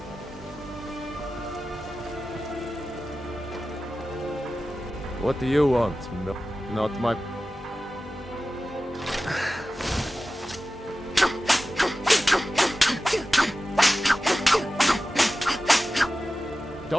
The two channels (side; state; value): both; normal; correlation 0.95